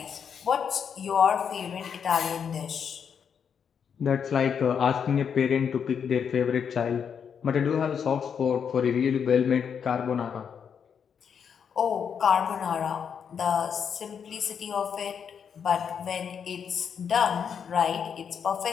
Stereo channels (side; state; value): right; quieter; 7.3 dB